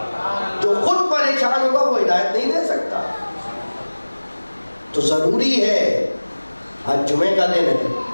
جو خود پریشان ہوگا وہ ہدایت نہیں دے سکتا۔ تو ضروری ہے، آج جمعے کا دن ہے،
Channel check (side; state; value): both; inverted; correlation -1.00